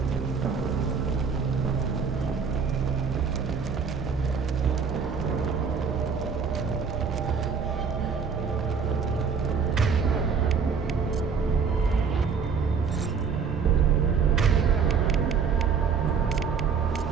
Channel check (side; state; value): left; quieter; 5.9 dB